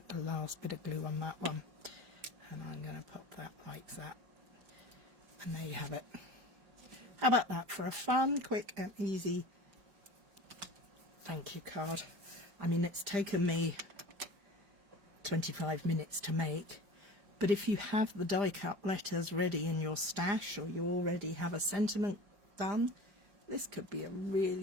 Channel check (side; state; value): left; late; 5.0 ms